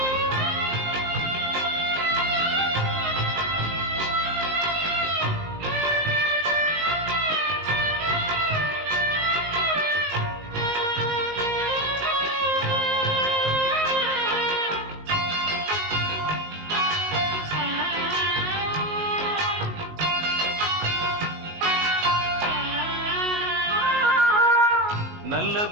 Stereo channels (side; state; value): left; late; 19 ms